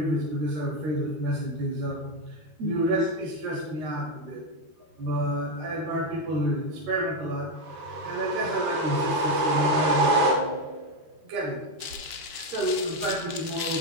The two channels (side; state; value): left; late; 13 ms